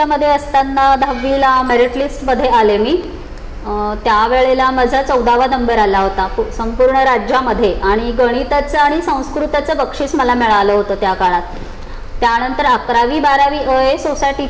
असताना 10वीला मेरिट लिस्टमध्ये आले मी। त्यावेळेला माझा 14वा नंबर आला होता संपूर्ण राज्यामध्ये आणि गणिताचं आणि संस्कृताचं बक्षीस मला मिळालं होतं त्या काळात। त्यानंतर 11वी 12वी अ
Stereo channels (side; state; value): both; identical; correlation 1.00